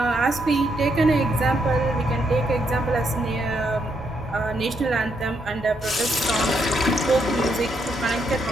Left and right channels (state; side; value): normal; both; correlation 0.77